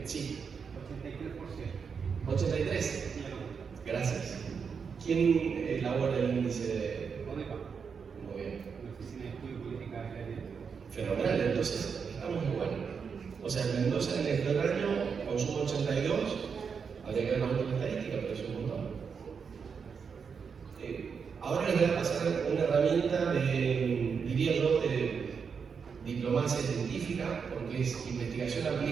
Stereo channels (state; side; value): quieter; left; 6.1 dB